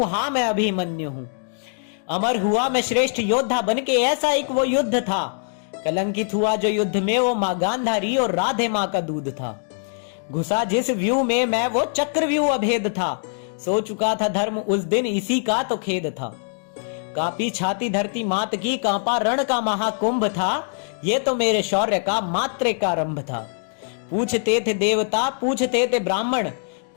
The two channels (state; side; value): silent; right; digital silence